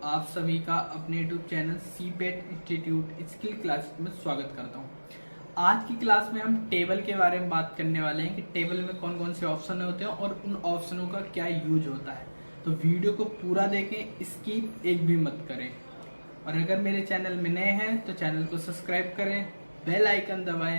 आप सभी का अपने YouTube channel CIPET institute skill class में स्वागत करता हूं। आज की क्लास में हम टेबल के बारे में बात करने वाले हैं कि टेबल में कौन कौन से ऑप्शन होते हैं और उन ऑप्शनों का क्या यूज होता है। तो वीडियो को पूरा देखें, स्किप एक भी मत करें। और अगर मेरे चैनल में नए हैं तो चैनल को सब्सक्राइब करें, बेल आइकन दबाएं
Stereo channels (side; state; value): both; inverted; correlation -1.00